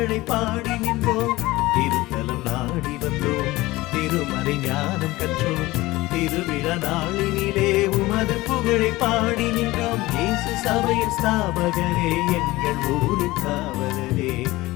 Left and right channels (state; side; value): quieter; right; 19.3 dB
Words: பாடி நின்றோம். திருத்தலம் நாடி வந்தோம், திருமறை ஞானம் கற்றோம், திருவிழா நாளினிலே உமது புகழை பாடி நின்றோம். இயேசு சபையின் ஸ்தாபகரே, எங்கள் ஊரின் காவலரே,